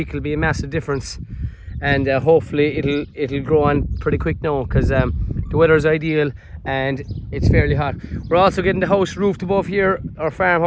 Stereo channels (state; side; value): identical; both; correlation 1.00